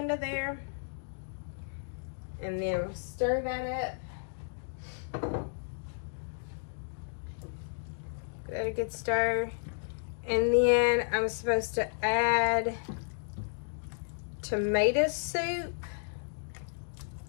there, and then stir that up. Give that a good stir. And then I'm supposed to add tomato soup.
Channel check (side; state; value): right; silent; digital silence